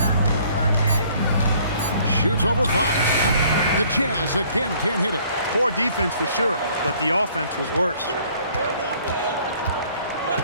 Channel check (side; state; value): both; inverted; correlation -0.59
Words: Shoots over 5. The Jazz again can't hit it. Poor defense for sure, but the offense was worse.